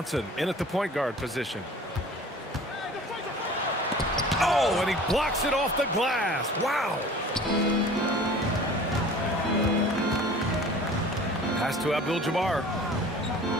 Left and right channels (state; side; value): normal; both; correlation 0.44